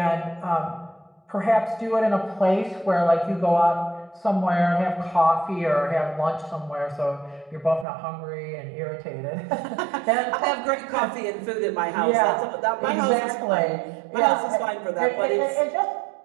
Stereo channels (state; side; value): drops out; left; at 7.9 s